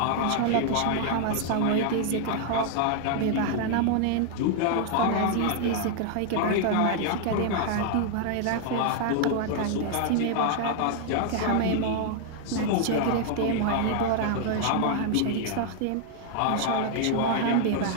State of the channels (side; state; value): both; different; correlation 0.00